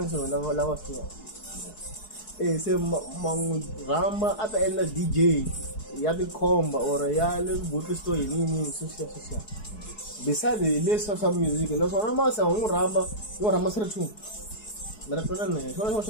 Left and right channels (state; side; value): late; right; 4.7 ms